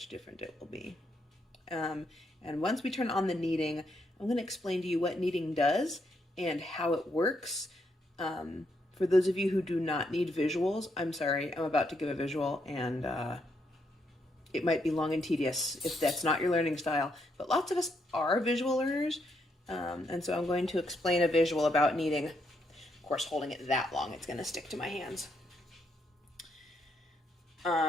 different it will be. And once we turn on the kneading, I'm going to explain to you what kneading does and how it works. For those of you who do not need visuals, I'm sorry, I'm about to give a visual, and it might be long and tedious if that's not your learning style, but lots of us are visual learners, and so I'm going to explain a visual about kneading. Of course, holding it that long, it's going to stick to my hands.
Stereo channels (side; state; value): both; normal; correlation 0.77